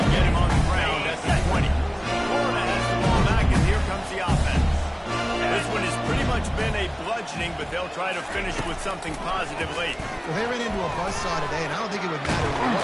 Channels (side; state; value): both; identical; correlation 1.00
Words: get him on the ground at the 20. Florida has the ball back, and here comes the offense. This one has pretty much been a bludgeoning, but they'll try to finish with something positive late. Well, they ran into a buzzsaw today, and I don't think it would matter what